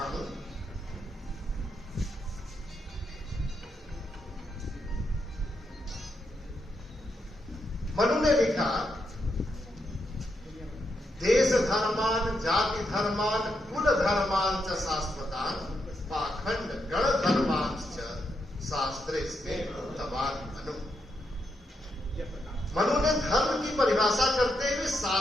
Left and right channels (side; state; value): both; normal; correlation 0.82